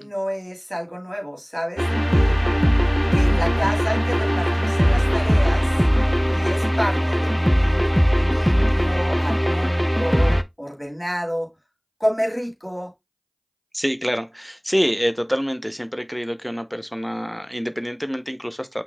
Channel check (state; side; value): identical; both; correlation 1.00